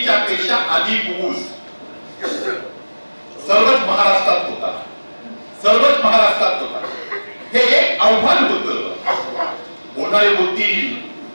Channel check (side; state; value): both; inverted; correlation -1.00